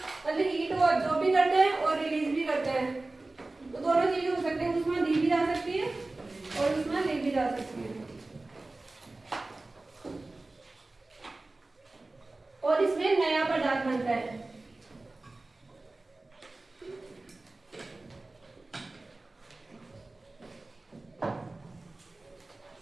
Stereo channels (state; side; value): quieter; left; 3.1 dB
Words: हीट वो अब्जॉर्ब भी करते हैं और रिलीज भी करते हैं। तो दोनों चीजें हो सकती है, उष्मा दी भी जा सकती है और उष्मा ली भी जा सकती है। और इसमें नया पदार्थ बनता है।